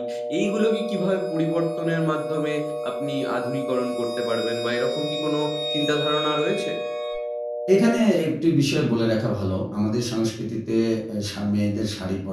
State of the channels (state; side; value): identical; both; correlation 1.00